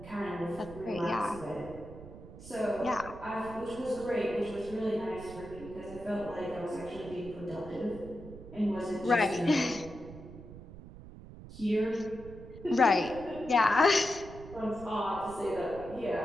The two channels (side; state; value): right; noise; rumble, 15 dB below the sound